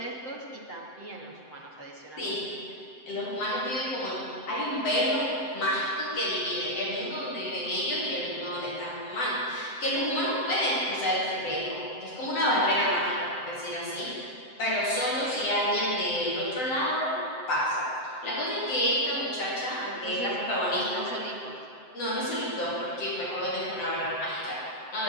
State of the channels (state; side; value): late; right; 7.8 ms